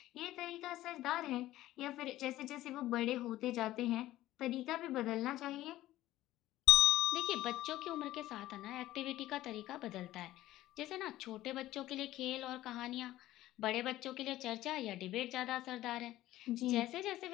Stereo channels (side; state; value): right; quieter; 15.3 dB